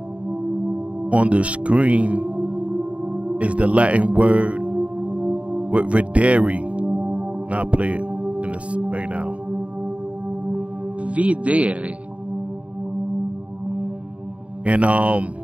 the screen is the Latin word with Videre. Now I'll play it in this right now. Videre. And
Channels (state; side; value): late; left; 0.065 ms